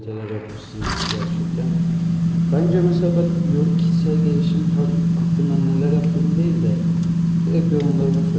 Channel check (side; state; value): both; identical; correlation 1.00